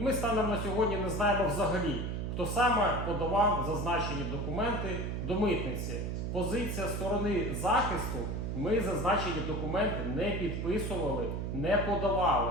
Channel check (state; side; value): noise; right; hum, 2 dB below the sound